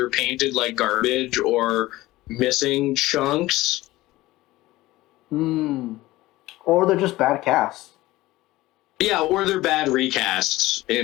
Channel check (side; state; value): right; quieter; 17.9 dB